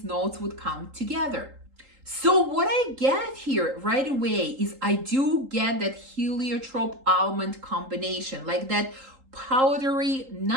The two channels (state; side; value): late; left; 3.8 ms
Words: notes would come together. So what I get here right away is I do get that heliotrope almond combination, like that powdery